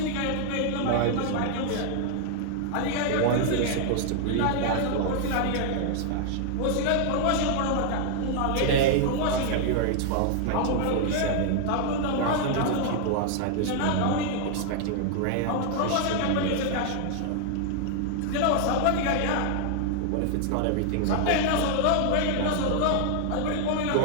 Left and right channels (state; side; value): different; both; correlation 0.00